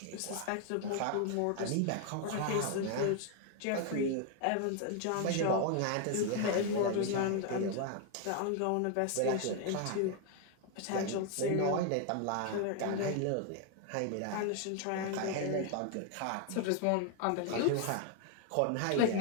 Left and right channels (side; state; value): both; different; correlation 0.01